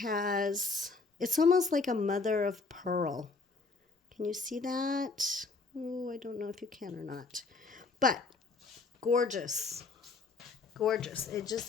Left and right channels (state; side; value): quieter; right; 4.1 dB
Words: almost like a mother of pearl. Can you see that? Oh, I don't know if you can or not. But gorgeous. Gorgeous. It